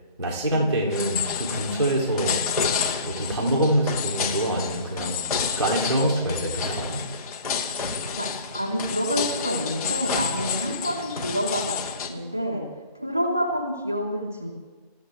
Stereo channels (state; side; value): inverted; both; correlation -0.47